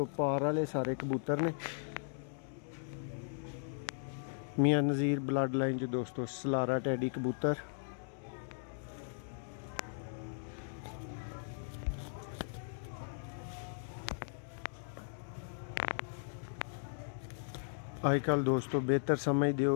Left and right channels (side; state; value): right; silent; digital silence